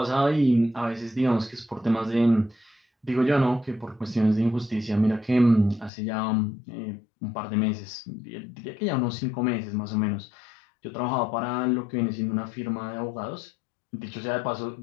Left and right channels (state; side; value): drops out; right; at 5.9 s